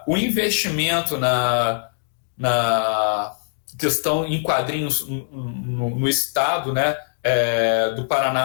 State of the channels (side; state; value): right; silent; digital silence